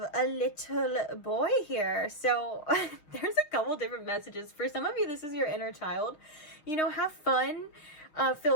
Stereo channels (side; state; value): right; late; 6.6 ms